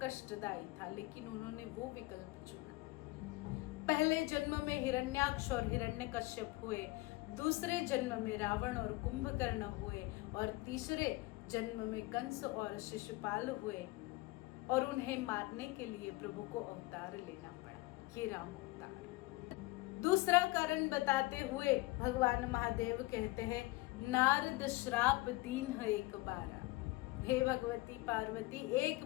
कष्टदायी था, लेकिन उन्होंने वो विकल्प चुना। पहले जन्म में हिरण्याक्ष और हिरण्यकश्यप हुए, दूसरे जन्म में रावण और कुंभकर्ण हुए, और तीसरे जन्म में कंस और शिशुपाल हुए, और उन्हें मारने के लिए प्रभु को अवतार लेना पड़ा, ये राम अवतार। दूसरा कारण बताते हुए भगवान महादेव कहते हैं, नारद श्राप दीन है एक बार। हे भगवती पार्वती, एक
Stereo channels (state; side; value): quieter; right; 21.2 dB